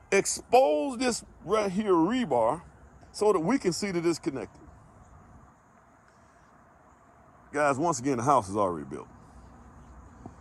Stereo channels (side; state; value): both; identical; correlation 1.00